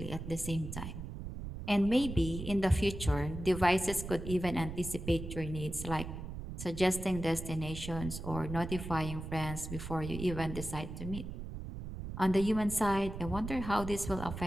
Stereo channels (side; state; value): right; noise; rumble, 8 dB below the sound